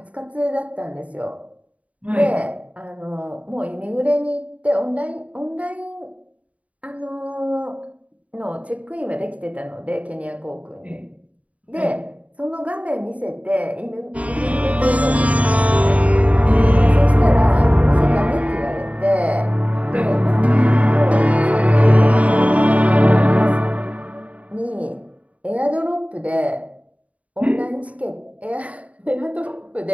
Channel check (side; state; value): left; late; 0.068 ms